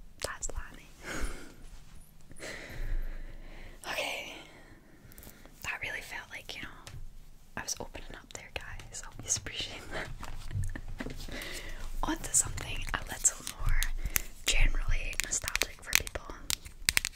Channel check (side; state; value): both; identical; correlation 1.00